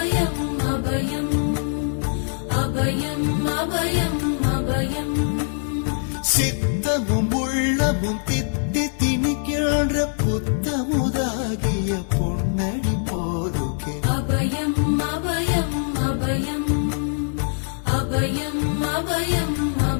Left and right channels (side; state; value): right; silent; digital silence